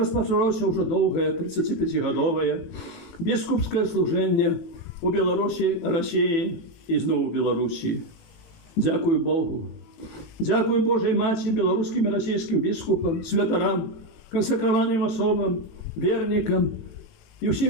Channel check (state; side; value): late; right; 18 ms